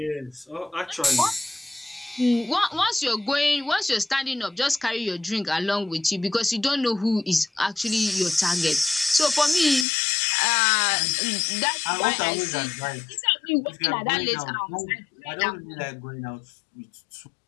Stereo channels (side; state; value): right; drops out; at 9.9 s